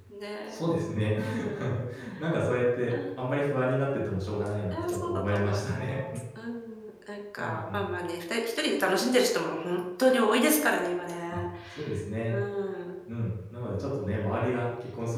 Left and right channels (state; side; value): identical; both; correlation 1.00